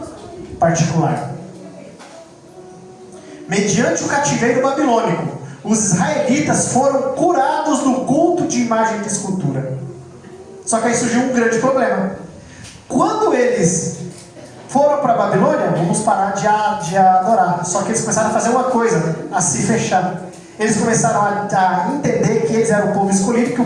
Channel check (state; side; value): identical; both; correlation 1.00